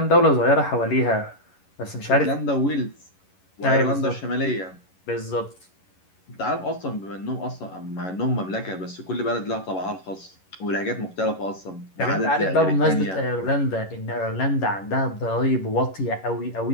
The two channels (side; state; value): right; late; 11 ms